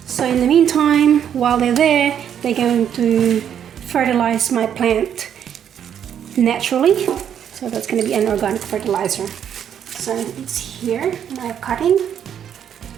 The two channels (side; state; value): left; quieter; 9.0 dB